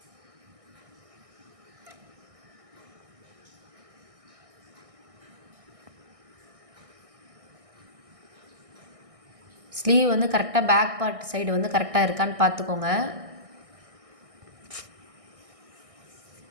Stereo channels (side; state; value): left; late; 1.6 ms